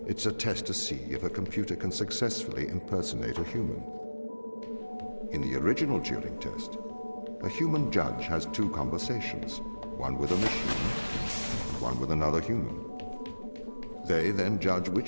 It's a test to see if a computer can successfully impersonate a human. In the original Turing test, a human judge has two conversations, one with a machine and one with another human. They then judge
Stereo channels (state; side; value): inverted; both; correlation -1.00